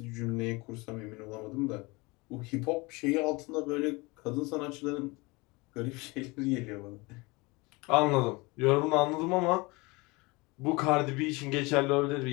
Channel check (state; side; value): quieter; right; 25.0 dB